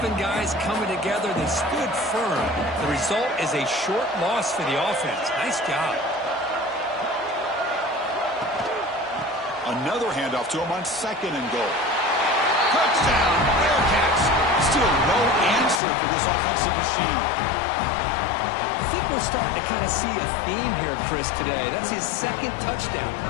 guys coming together. They stood firm. The result is a short loss for the offense. Nice job. Another handoff to him on 2nd and goal. Touchdown, Bearcats. Still no answer for this offensive machine. I think we're starting to kind of see a theme here, Chris, today. That's his 2nd touchdown.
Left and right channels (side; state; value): right; drops out; at 15.8 s